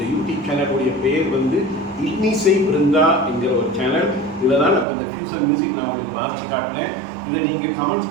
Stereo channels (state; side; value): drops out; left; at 4.9 s